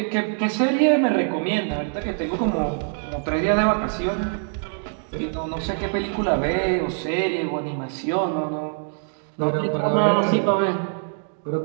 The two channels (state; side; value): silent; left; 63 dB below the other